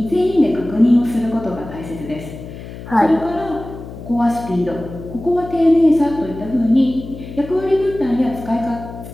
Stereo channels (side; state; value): left; noise; hum, 13 dB below the sound